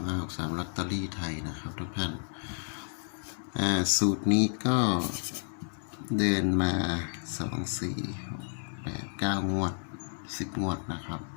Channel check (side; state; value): right; silent; digital silence